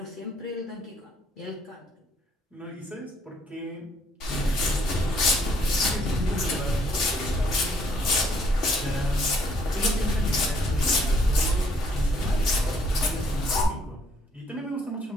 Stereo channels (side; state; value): both; normal; correlation 0.65